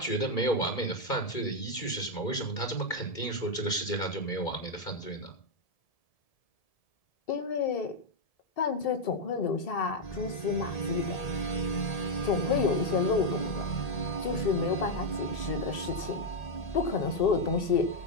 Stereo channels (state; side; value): late; right; 1.7 ms